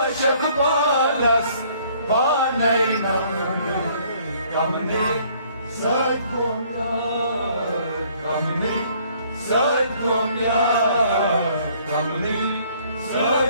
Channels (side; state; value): both; inverted; correlation -0.61